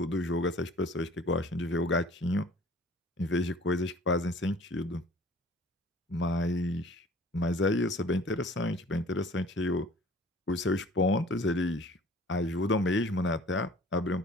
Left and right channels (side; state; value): both; normal; correlation 0.49